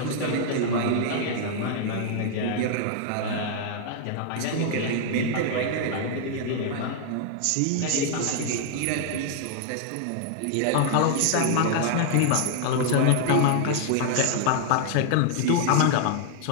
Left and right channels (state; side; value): different; both; correlation 0.00